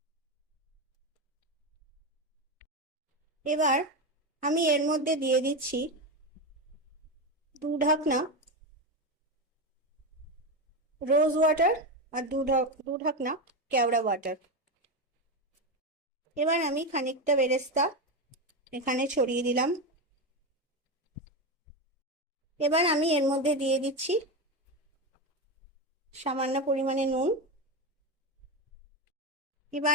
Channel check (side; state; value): both; normal; correlation 0.14